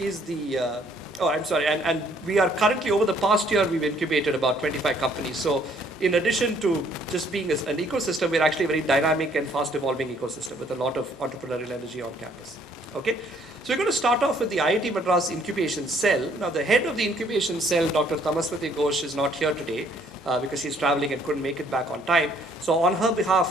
the, and we are currently, over the past year, we've incubated about 25 companies. So in addition to just being an ecosystem, we're actually a very dynamic and fast evolving ecosystem with a lot of entrepreneurial energy on campus, okay? So we're going to start off with the IIT Madras Incubation Cell. Now, the head of the Incubation Cell, Dr. Tamaswati Ghosh, is not here today because she's traveling and couldn't make it back on time. So on her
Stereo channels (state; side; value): normal; both; correlation 0.64